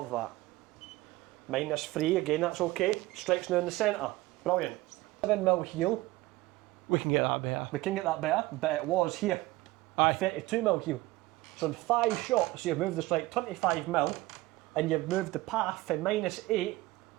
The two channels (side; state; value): left; quieter; 19.0 dB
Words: that. -3, again, that's okay. Strikes now in the centre. Brilliant. 7mm heel. We can get that better. We can get that better, but it was here. Aye. 32mm heel. So in 5 shots, you've moved the strike 25mm, and you've moved the path from -8